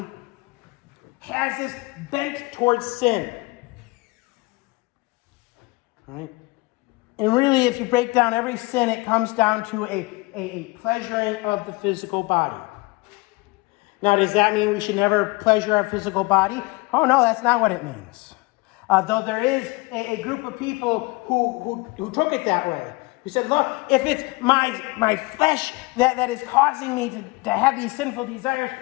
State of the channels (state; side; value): quieter; right; 24.1 dB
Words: has this bent towards sin. All right? And really, if you break down every sin, it comes down to a pleasuring of the physical body. Now, does that mean we should never pleasure our physical body? Oh, no, that's not what it means. Though there is a group of people who took it that way. Who said, look, if it's my flesh that is causing me to have these sinful desires,